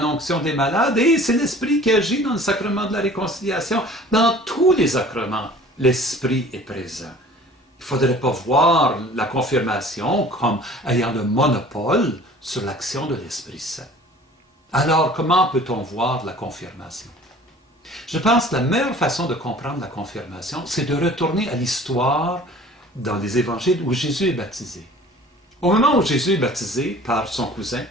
l'onction des malades. Et c'est l'Esprit qui agit dans le sacrement de la réconciliation. Dans tous les sacrements, l'Esprit est présent. Il ne faudrait pas voir la confirmation comme ayant le monopole sur l'action de l'Esprit Saint. Alors, comment peut-on voir la confirmation? Je pense que la meilleure façon de comprendre la confirmation, c'est de retourner à l'histoire dans les évangiles où Jésus est baptisé. Au moment où Jésus est baptisé par son cousin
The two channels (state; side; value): normal; both; correlation 0.47